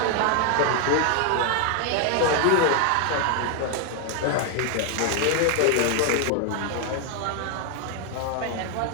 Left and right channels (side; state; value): both; different; correlation 0.00